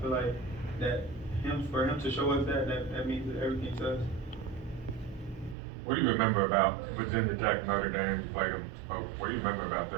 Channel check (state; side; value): drops out; left; at 5.6 s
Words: feel like that for him to show us that means that everything to us. What do you remember about Virginia Tech, Notre Dame? You played them both. What do you remember about